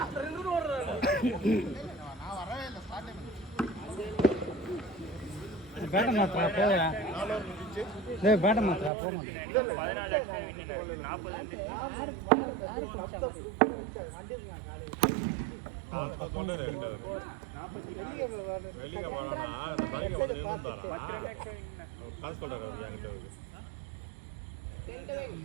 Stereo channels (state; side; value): drops out; left; at 8.9 s